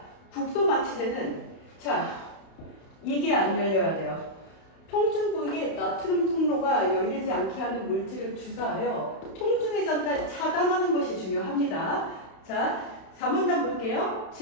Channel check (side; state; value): right; late; 31 ms